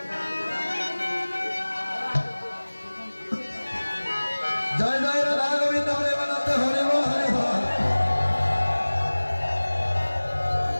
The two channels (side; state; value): both; inverted; correlation -1.00